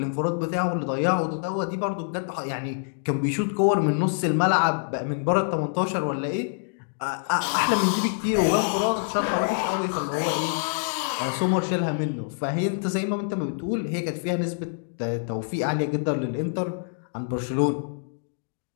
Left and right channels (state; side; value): silent; right; digital silence